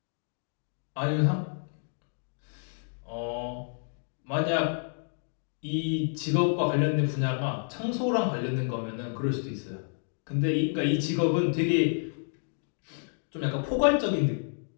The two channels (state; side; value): silent; right; digital silence